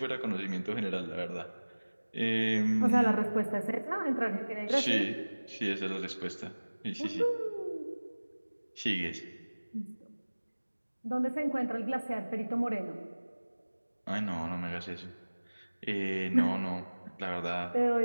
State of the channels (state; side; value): inverted; both; correlation -1.00